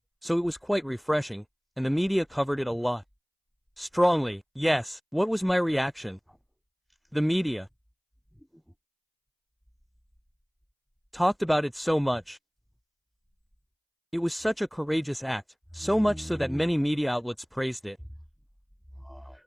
so it was quite refreshing, and the media covered it a lot. Strongly, yes. What was my reaction? The media talked about it so much. It was such a courageous act, so much so that many media outlets praised it.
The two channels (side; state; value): both; identical; correlation 1.00